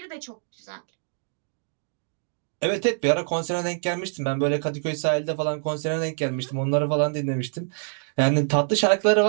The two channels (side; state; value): left; silent; digital silence